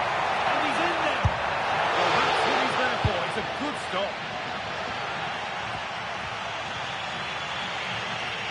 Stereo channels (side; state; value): both; identical; correlation 1.00